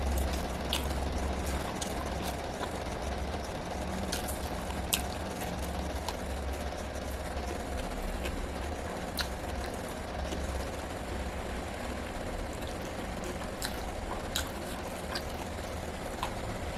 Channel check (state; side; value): identical; both; correlation 1.00